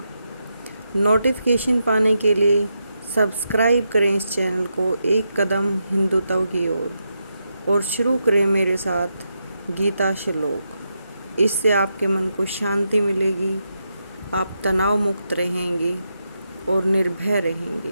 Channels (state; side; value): inverted; both; correlation -0.84